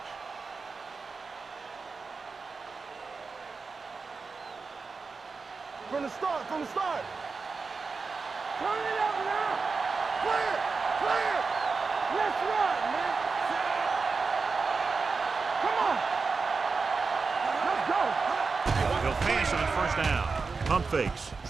From the start. Turn it up now. Clear. Let's run, man. Come on. Let's go. He'll pass on first down. Pump fakes,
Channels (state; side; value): quieter; left; 4.5 dB